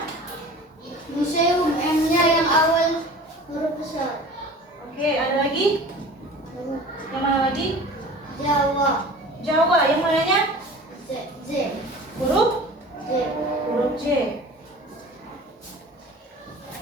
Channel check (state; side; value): normal; both; correlation 0.41